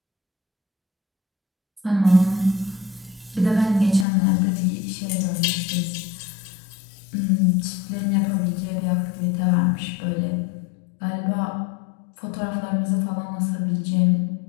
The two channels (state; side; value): drops out; right; at 4.0 s